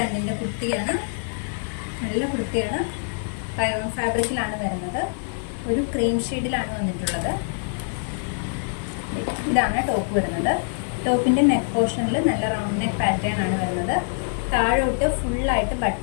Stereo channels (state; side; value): silent; right; 59 dB below the other